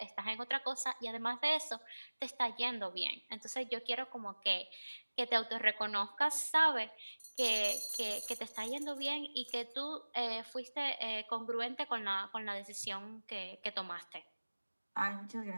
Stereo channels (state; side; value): inverted; both; correlation -1.00